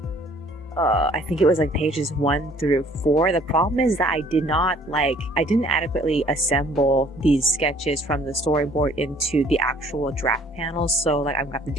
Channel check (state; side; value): normal; both; correlation 0.57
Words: I think it was like pages 1 through 4. The problem is that I didn't adequately assemble these sketches from the storyboard into the actual draft panels, so like I'm gonna have to